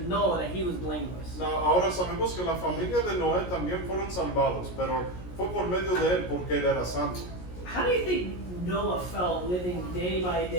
Noah that he was blameless. no, ahora sabemos que la familia de Noé también fueron salvados, pero fue por medio de él porque él era santo. How do you think Noah felt living day by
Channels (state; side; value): late; right; 17 ms